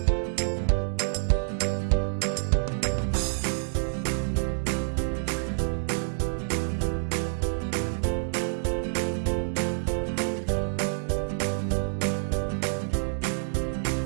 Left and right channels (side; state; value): left; silent; 60 dB below the other